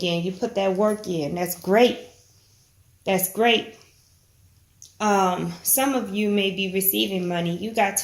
You put that work in. That's great. That's great. Some of you may be receiving money. You got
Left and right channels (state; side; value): identical; both; correlation 1.00